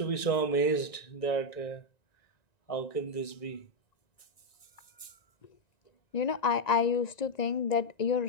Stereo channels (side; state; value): right; late; 1.9 ms